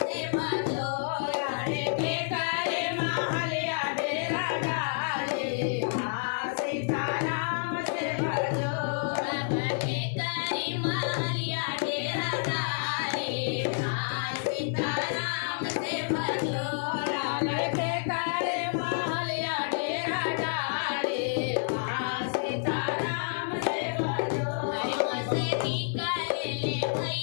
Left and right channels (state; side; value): silent; right; digital silence